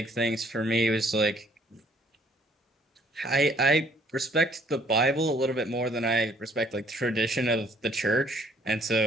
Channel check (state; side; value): normal; both; correlation 0.62